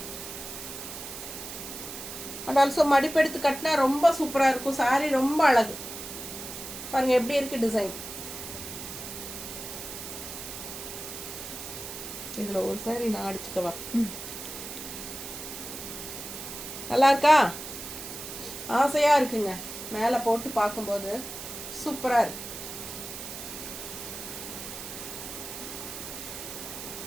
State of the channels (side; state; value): right; noise; hiss, 9 dB below the sound